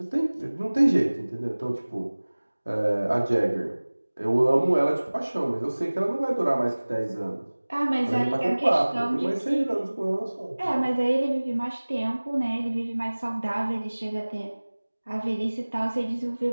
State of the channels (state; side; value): inverted; both; correlation -1.00